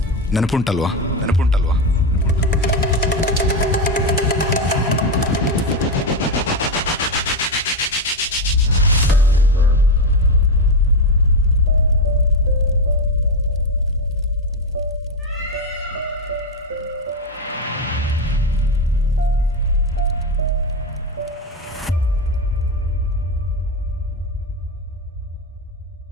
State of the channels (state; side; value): normal; both; correlation 0.11